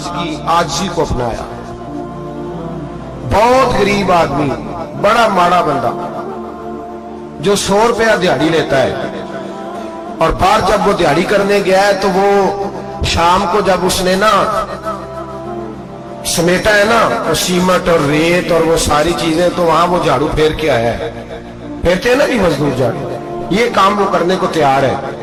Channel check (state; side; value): identical; both; correlation 1.00